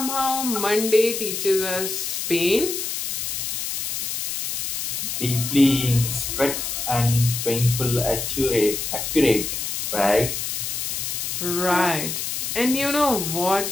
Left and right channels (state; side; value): noise; left; hiss, 3 dB below the sound